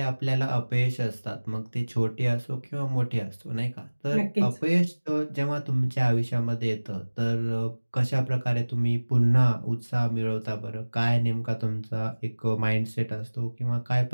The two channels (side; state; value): both; inverted; correlation -1.00